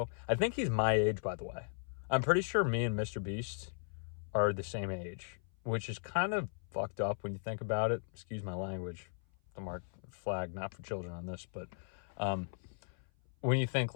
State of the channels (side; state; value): right; silent; 53 dB below the other